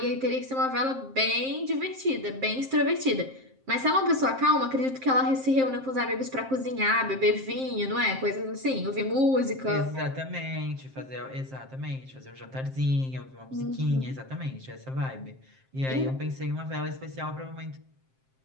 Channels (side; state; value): left; late; 7.6 ms